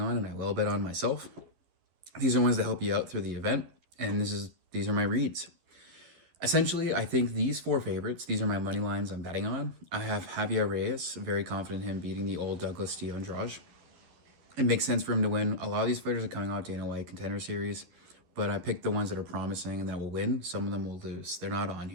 on, and I will bet on myself. These are ones that help you out through the event, and these are my reads. Essentially, I think these four favorites, these are my money lines I'm betting on. I have Javier Reyes, very confident in him beating the old Douglas Tio Andrade. It makes sense for him to win. A lot of these fighters are coming out Dana White Contender Series, but I picked the ones that are promising and that will win. Some of them will lose. They're not on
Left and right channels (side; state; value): left; late; 12 ms